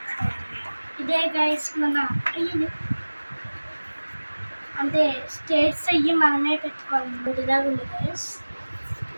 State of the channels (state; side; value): inverted; both; correlation -1.00